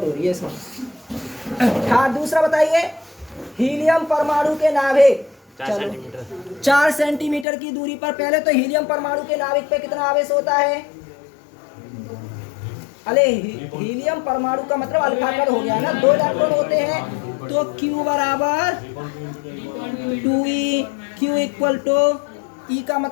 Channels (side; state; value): right; drops out; at 7.5 s